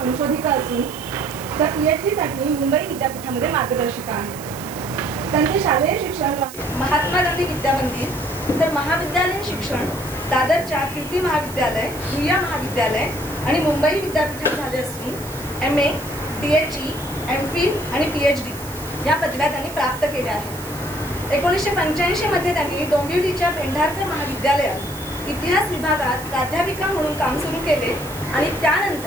असून त्या PhD साठी मुंबई विद्यापीठामध्ये मार्गदर्शिका आहेत। त्यांचे शालेय शिक्षण महात्मा गांधी विद्यामंदिर तर महाविद्यालयीन शिक्षण दादरच्या कीर्ती महाविद्यालय, भुया महाविद्यालय आणि मुंबई विद्यापीठात झाले असून MA, DHE, MPhil आणि PhD या पदव्या त्यांनी प्राप्त केल्या आहेत। 1985 मध्ये त्यांनी डोंबिवलीच्या पेंढारकर महाविद्यालयात इतिहास विभागात प्राध्यापिका म्हणून काम सुरू केले आणि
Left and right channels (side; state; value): right; noise; hiss, 15 dB below the sound